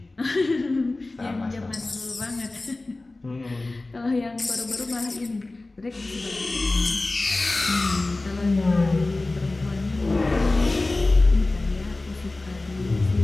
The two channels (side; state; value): right; quieter; 3.1 dB